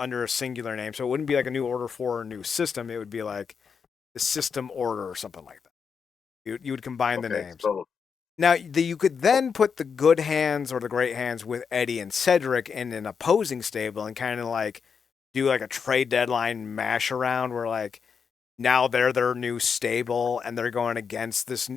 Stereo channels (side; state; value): right; quieter; 6.2 dB